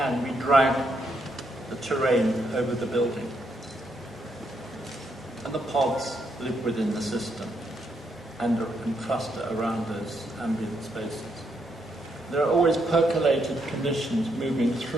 we drag the terrain over the building. And the pods live within the system and cluster around those ambient spaces. There are always percolated conditions moving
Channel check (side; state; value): both; normal; correlation 0.77